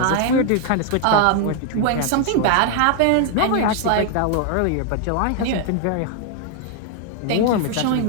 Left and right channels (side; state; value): both; different; correlation 0.00